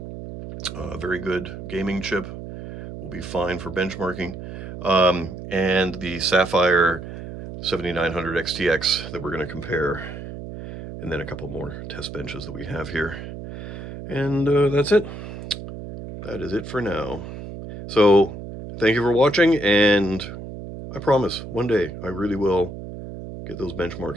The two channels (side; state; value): right; noise; hum, 10 dB below the sound